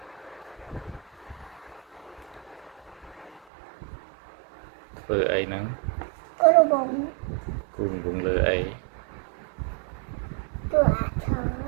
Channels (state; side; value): drops out; left; at 3.4 s